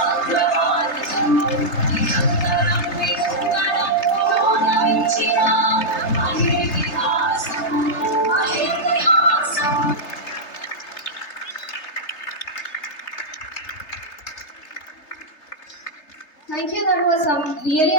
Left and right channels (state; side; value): late; right; 3.3 ms